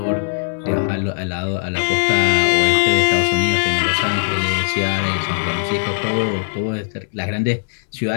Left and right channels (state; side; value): silent; right; digital silence